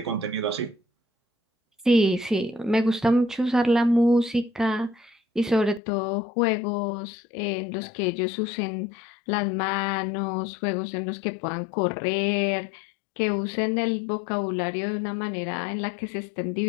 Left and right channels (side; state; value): right; drops out; at 5.8 s